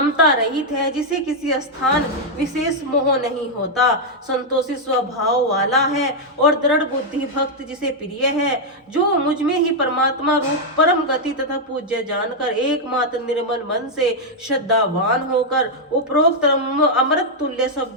रहित है, जिसे किसी स्थान विशेष मोह नहीं होता, संतोषी स्वभाव वाला है और दृढ़ बुद्धि भक्त जिसे प्रिय है, जो मुझ में ही परमात्मा रूप परम गति तथा पूज्य जानकर एकमात्र निर्मल मन से श्रद्धावान होकर उपरोक्त अमृत तुल्य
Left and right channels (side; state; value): both; normal; correlation -0.02